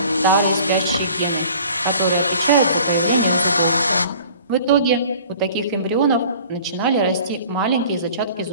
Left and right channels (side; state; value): both; inverted; correlation -0.48